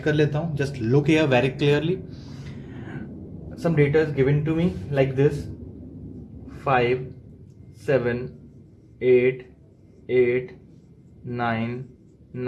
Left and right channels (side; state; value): both; identical; correlation 1.00